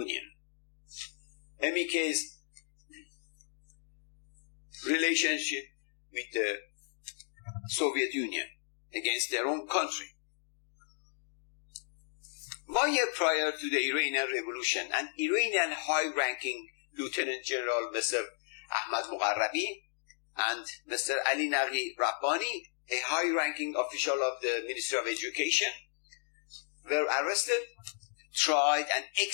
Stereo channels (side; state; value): right; silent; 55 dB below the other